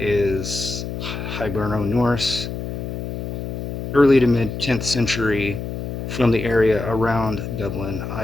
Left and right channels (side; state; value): left; noise; hum, 6 dB below the sound